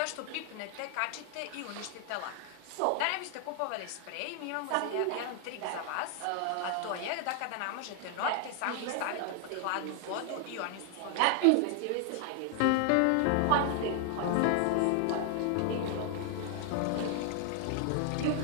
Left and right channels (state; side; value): different; both; correlation 0.00